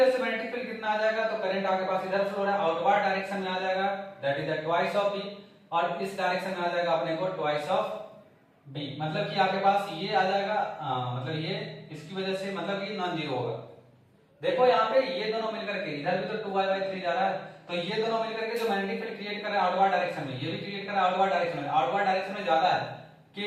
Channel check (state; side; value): identical; both; correlation 1.00